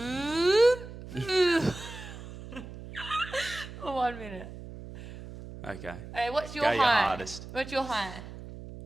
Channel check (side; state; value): right; noise; hum, 13 dB below the sound